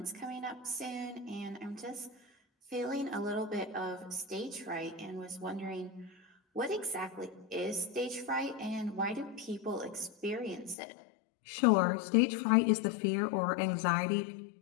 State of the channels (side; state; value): right; drops out; at 10.8 s